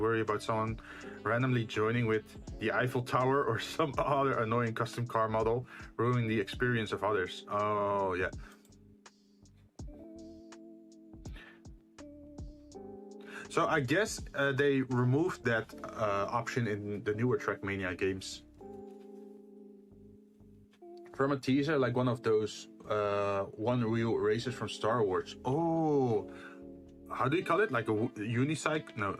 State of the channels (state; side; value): identical; both; correlation 1.00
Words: worry about someone randomly joining with the Eiffel Tower or some other annoying custom car model ruining the experience of others. Oh, yeah. So I guess they removed that option in the newer Trackmania games. From a teaser, like one of those one-wheel races from Star Wars. Oh, how do you call it? Like a unicycle? No,